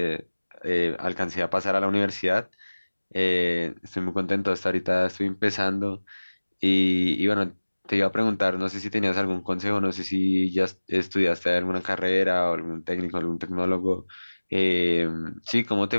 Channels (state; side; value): inverted; both; correlation -1.00